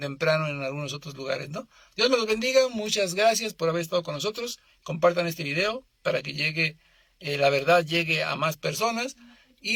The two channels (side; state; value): both; identical; correlation 1.00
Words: en algunos otros lugares, ¿no? Dios me los bendiga, muchas gracias por haber estado con nosotros. Compartan este video para que llegue, la verdad llegue a más personas